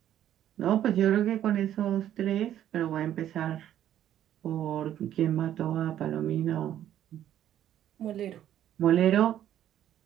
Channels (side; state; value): left; quieter; 11.3 dB